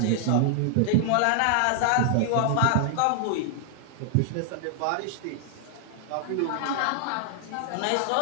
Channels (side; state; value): both; different; correlation -0.01